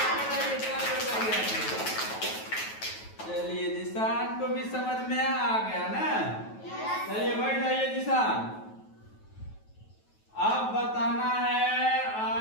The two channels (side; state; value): right; late; 9.2 ms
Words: चलिए जिसान को भी समझ में आ गया ना। चलिए बैठ जाइए जिसान। अब बताना है